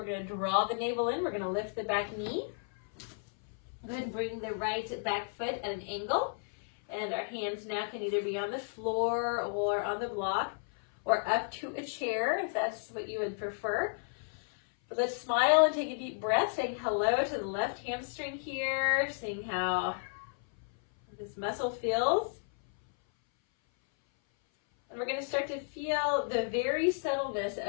going to draw the navel in. We're going to lift the back knee. Go ahead and bring the right back foot at an angle. And our hands now can either be on the floor or on the block or up to a chair if that's what you would prefer. But let's smile and take a deep breath, saying hello to the left hamstring here, seeing how this muscle feels. And we're going to start to feel the very subtleness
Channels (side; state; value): right; silent; 56 dB below the other